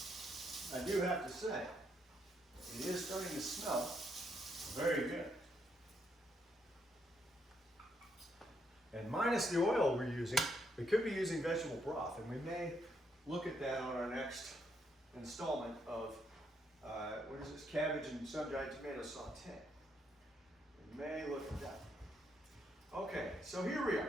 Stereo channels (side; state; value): both; normal; correlation 0.76